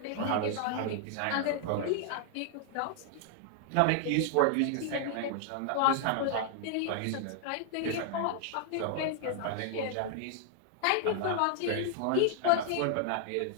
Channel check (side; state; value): both; different; correlation -0.01